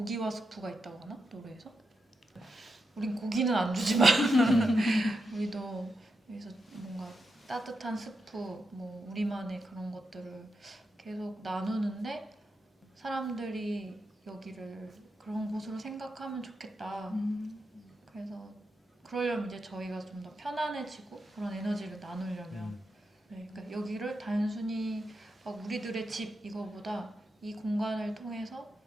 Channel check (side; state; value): both; normal; correlation 0.86